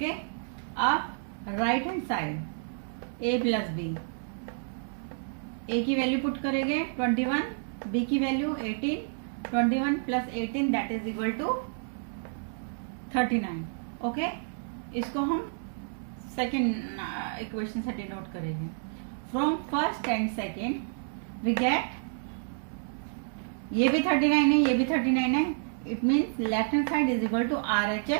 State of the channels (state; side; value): silent; left; digital silence